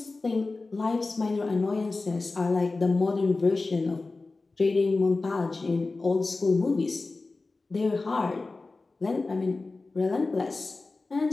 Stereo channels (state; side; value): quieter; right; 3.5 dB